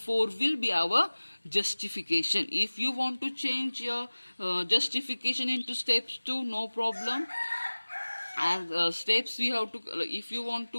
will be our justification. If you want to change your justification into steps 2, no problem. And steps we have to, if you want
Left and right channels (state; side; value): inverted; both; correlation -1.00